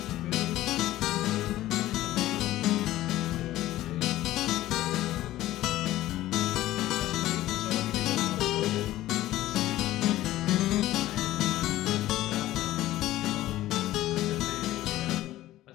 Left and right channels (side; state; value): right; quieter; 15.2 dB